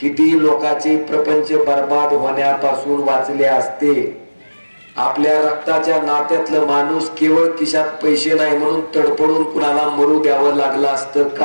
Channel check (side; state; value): both; inverted; correlation -1.00